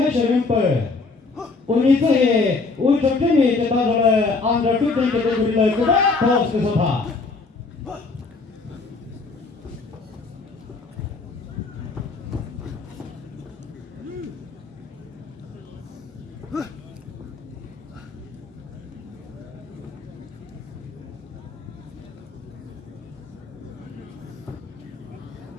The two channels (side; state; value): right; quieter; 4.0 dB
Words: 우리 저희 우리 정팀이 대다서를 안들 피딩 대대구리를 그래 더스에서 다.